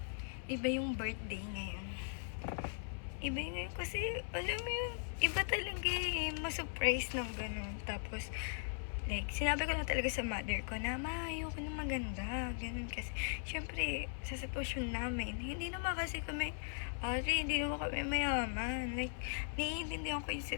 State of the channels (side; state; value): right; silent; 52 dB below the other